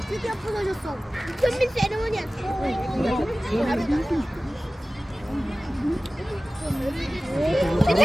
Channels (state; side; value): normal; both; correlation 0.96